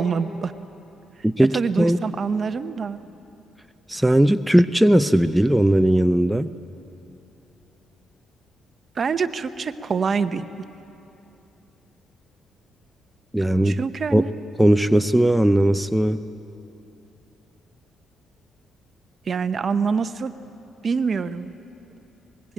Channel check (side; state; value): both; normal; correlation 0.96